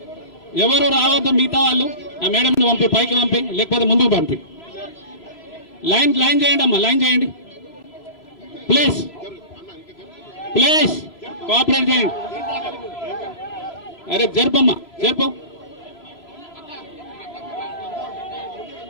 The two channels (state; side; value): late; right; 3.0 ms